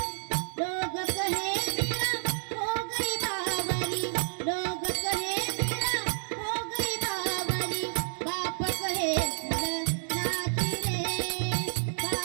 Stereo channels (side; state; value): left; silent; digital silence